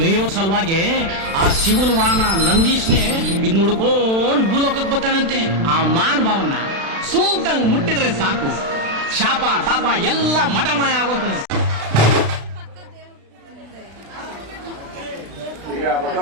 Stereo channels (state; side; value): late; left; 36 ms